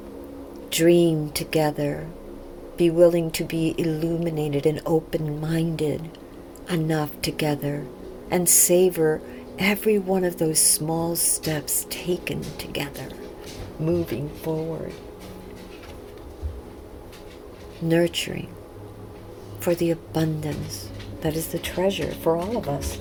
dream together, be willing to be illuminated and open-minded enough together, and savor every one of those small steps taken together, moving forward, nurturing for the abundance that is the treasure for all of us,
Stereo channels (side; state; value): both; identical; correlation 1.00